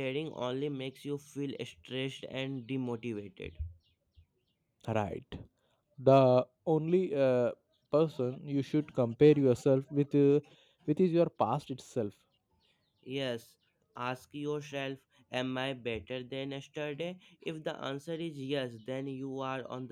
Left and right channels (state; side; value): identical; both; correlation 1.00